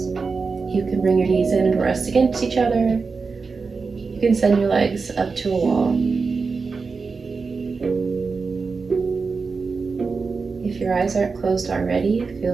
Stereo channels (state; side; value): quieter; left; 4.6 dB